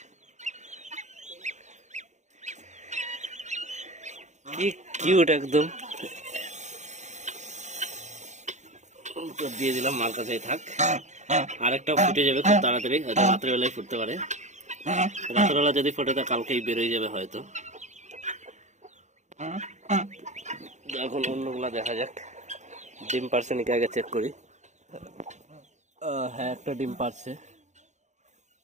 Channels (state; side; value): late; left; 0.34 ms